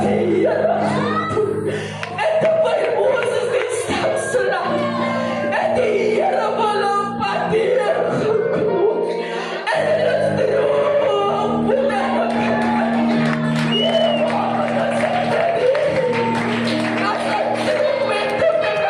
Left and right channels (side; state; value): both; identical; correlation 1.00